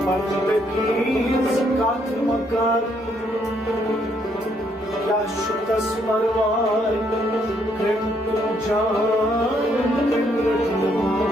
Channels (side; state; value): both; normal; correlation 0.71